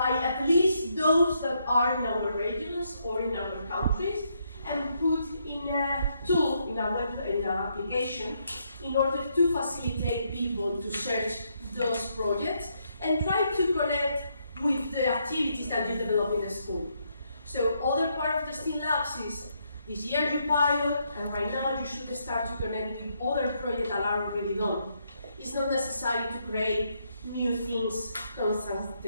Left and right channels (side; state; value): both; inverted; correlation -0.76